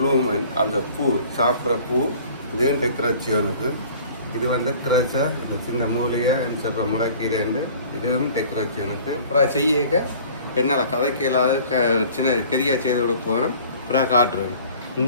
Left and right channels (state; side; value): inverted; both; correlation -0.49